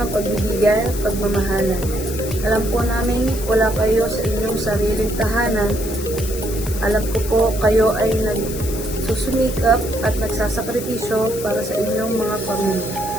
ng pagbibigay at pagmamahalan. Alam po namin wala kayo sa inyong sariling tahanan. Alam ko po kayo ay nagsusumikap at nagsasakripisyo para sa inyong mga pamilya.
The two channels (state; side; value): noise; left; hiss, 11 dB below the sound